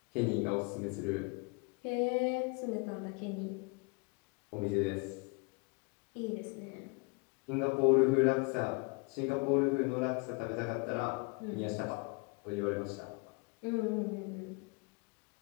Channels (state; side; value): quieter; right; 30.8 dB